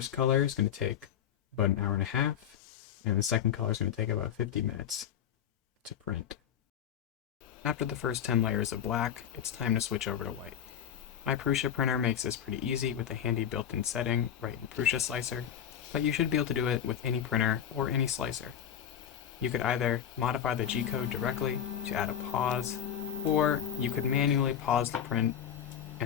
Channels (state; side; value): quieter; right; 9.3 dB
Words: color is going to take about an hour and a half, and the second color is going to take about 50 minutes to print. After the first 10 layers of black, it's time to switch over to white. My Prusa printer makes this pretty easy with a handy built-in setting right in Prusa Slicer, but you should be able to do it with any printer or any slicer. You could either modify the G-code directly to add a pause, or you could manually pause the print